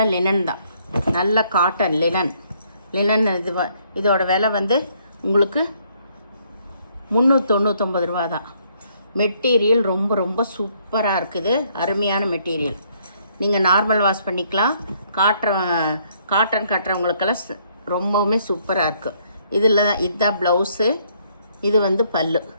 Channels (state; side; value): inverted; both; correlation -0.68